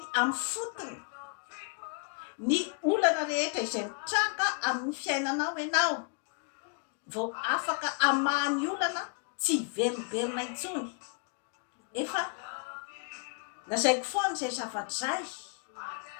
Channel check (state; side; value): quieter; right; 35.0 dB